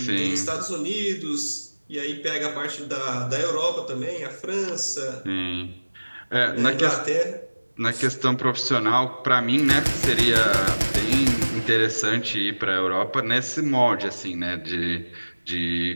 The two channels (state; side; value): inverted; both; correlation -1.00